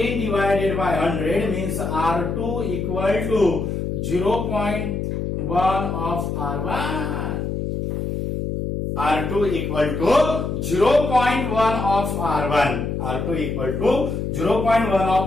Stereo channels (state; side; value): noise; left; hum, 3 dB below the sound